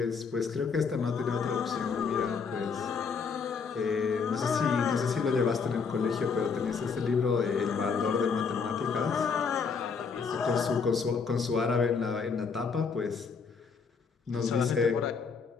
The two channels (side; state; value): right; quieter; 5.5 dB